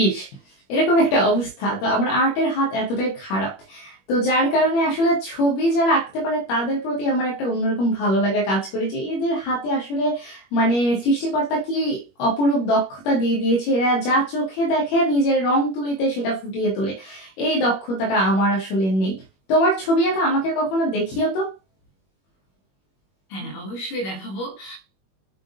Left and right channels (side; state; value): right; late; 21 ms